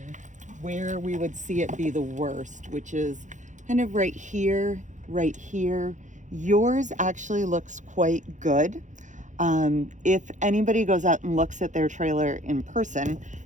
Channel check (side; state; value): left; late; 0.36 ms